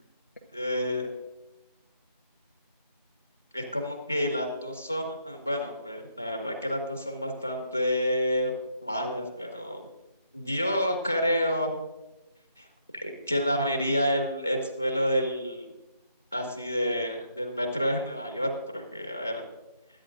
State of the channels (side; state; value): both; inverted; correlation -0.73